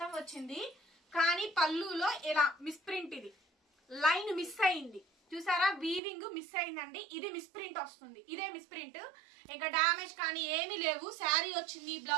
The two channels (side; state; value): left; drops out; at 6.0 s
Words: వచ్చింది. కానీ పళ్ళులో ఇలా మిస్ప్రింట్, ఇది లైన్ మిస్ అయింది చూసారా, వీవింగ్ మిస్ అయిందండి. ఇది మిస్ప్రింట్ వస్తుంది, ఇదే మిస్ప్రింట్. ఇంకా డామేజ్ కానీ ఏమీ లేవు. శారీ వచ్చింది,